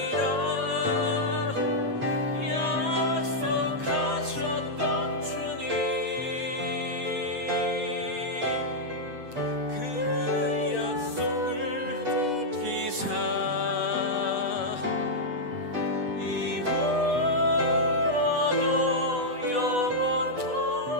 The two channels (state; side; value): late; left; 8.2 ms